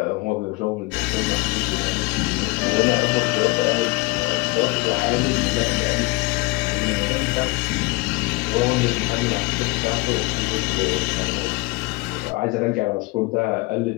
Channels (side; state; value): right; quieter; 23.9 dB